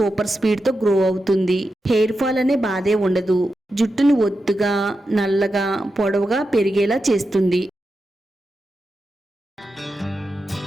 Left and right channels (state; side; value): normal; both; correlation 0.89